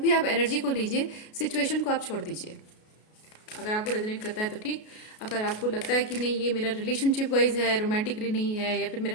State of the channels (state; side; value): late; right; 33 ms